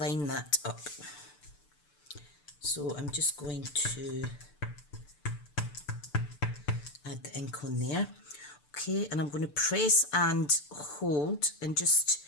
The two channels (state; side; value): late; right; 6.8 ms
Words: that up. So I'm just going to add the ink on there. Okay, and I'm going to press and hold and just